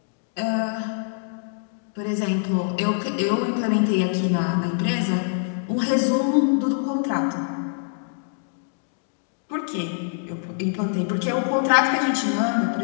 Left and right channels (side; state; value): right; silent; 62 dB below the other